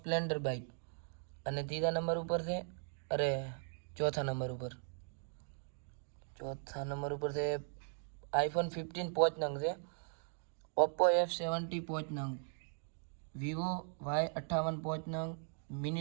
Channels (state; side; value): silent; left; 52 dB below the other